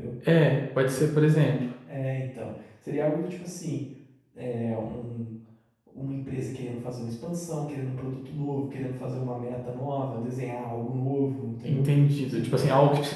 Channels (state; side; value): identical; both; correlation 1.00